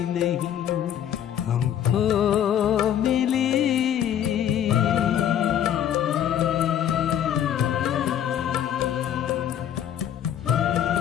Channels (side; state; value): right; quieter; 10.1 dB